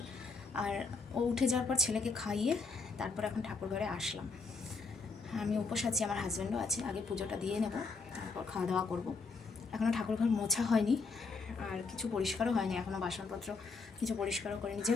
আর ও উঠে যাওয়ার পর ছেলেকে খাইয়ে তারপর এখন ঠাকুর ঘরে আসলাম। আমি উপোস আছি, আমার হাজব্যান্ডও আছে। আগে পুজোটা দিয়ে নেব, তারপর খাওয়া দাওয়া করবো। এখনও ঠাকুরঘর মোছা হয়নি, আর কিছু পরিষ্কারও হয়নি এখনও, বাসনপত্র কিছু পরিষ্কারও করিনি,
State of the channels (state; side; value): quieter; right; 4.3 dB